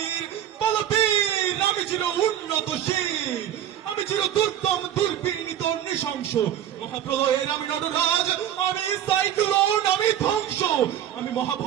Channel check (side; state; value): left; quieter; 10.7 dB